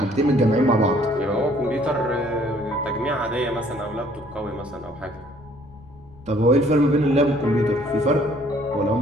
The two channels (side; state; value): left; noise; rumble, 22 dB below the sound